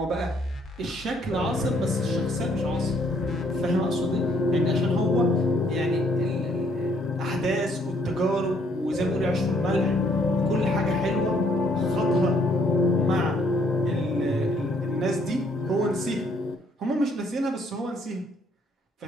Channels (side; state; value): both; normal; correlation 0.66